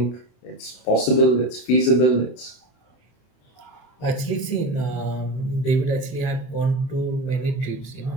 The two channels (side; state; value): right; late; 30 ms